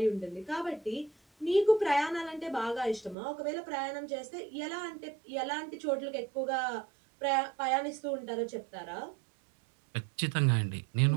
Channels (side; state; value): left; drops out; at 3.2 s